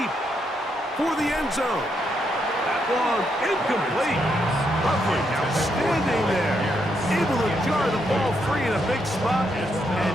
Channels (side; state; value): both; normal; correlation 0.79